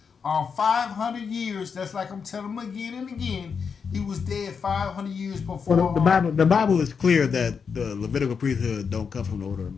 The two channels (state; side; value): quieter; right; 6.0 dB